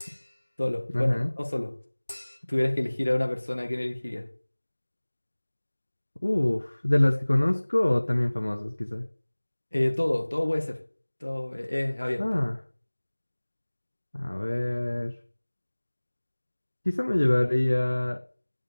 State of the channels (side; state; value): both; inverted; correlation -1.00